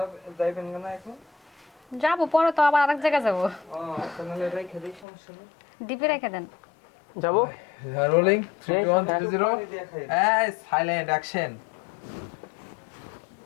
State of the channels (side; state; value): right; drops out; at 5.1 s